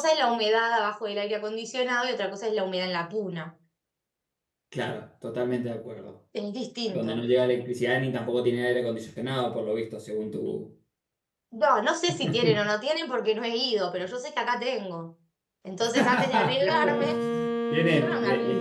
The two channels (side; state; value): both; identical; correlation 1.00